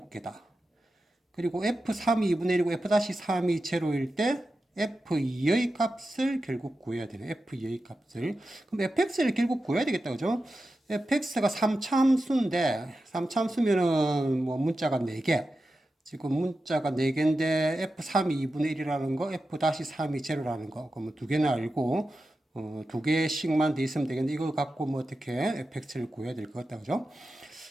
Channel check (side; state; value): both; normal; correlation 0.91